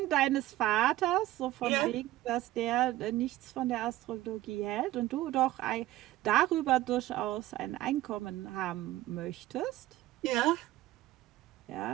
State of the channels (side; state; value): left; quieter; 15.8 dB